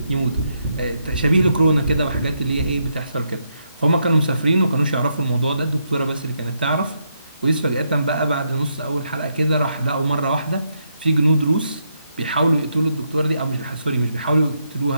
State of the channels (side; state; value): both; inverted; correlation -0.79